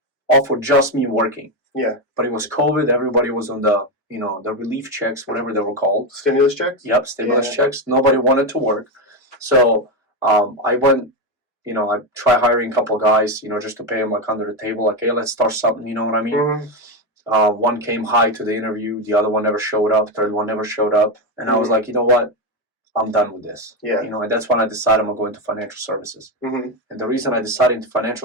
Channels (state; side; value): normal; both; correlation 0.10